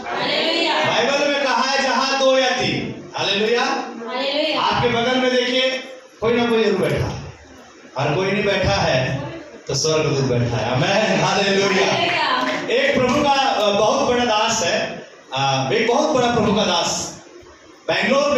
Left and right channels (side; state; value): both; identical; correlation 1.00